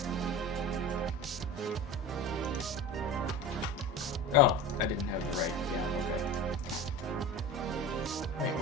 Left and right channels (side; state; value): both; normal; correlation 0.31